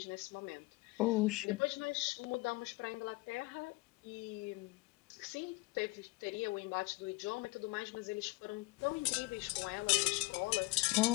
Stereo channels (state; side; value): quieter; right; 23.6 dB